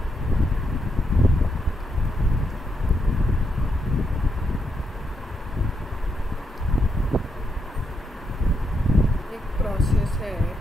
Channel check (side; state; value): both; normal; correlation 0.80